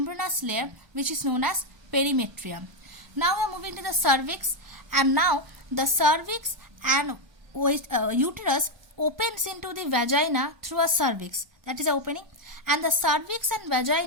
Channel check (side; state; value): left; late; 1.2 ms